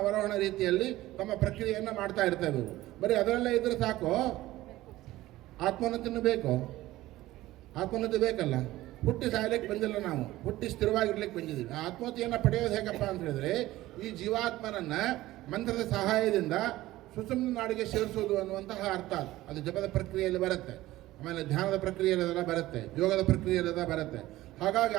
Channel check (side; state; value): left; quieter; 16.6 dB